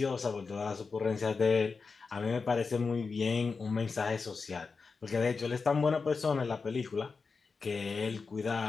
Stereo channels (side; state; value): right; quieter; 4.7 dB